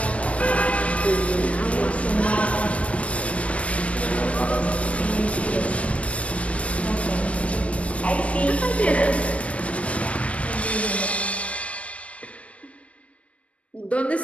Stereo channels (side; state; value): right; late; 0.063 ms